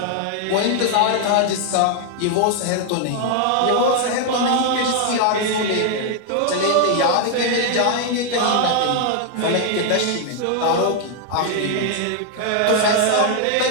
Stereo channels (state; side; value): different; both; correlation 0.00